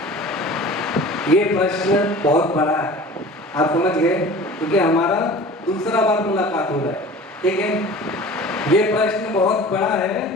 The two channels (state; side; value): normal; both; correlation 0.41